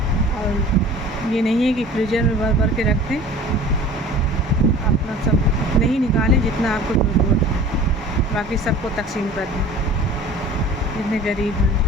और ये नहीं है कि फ्रीजर में भर भर के रख दें, अपना सब नहीं निकालें जितना आपको ज़रूरत है, बाकी सबको तकसीम कर दें। जितने गरीब हैं,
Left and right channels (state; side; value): normal; both; correlation 0.43